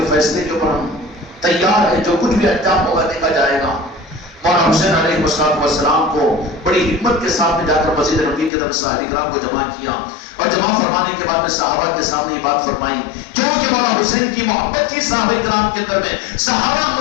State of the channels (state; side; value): drops out; right; at 8.5 s